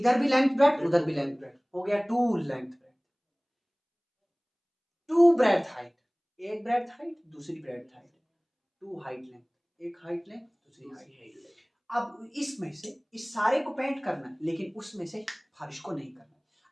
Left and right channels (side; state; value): both; identical; correlation 1.00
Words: भी लेंथ ब्रेड्थ, उधर भी लेंथ ब्रेड्थ, हो गया 2 लेंथ ब्रेड्थ, 2 ब्रेड्थ हाइट, एक ब्रेड्थ हाइट दूसरी ब्रेड्थ हाइट, 2 हाइट लेंथ, एक हाइट लेंथ दूसरी हाइट लेंथ। अब इसमें से इस सारे को पेंट करना है, लेकिन उसमें से फर्श को नहीं करना।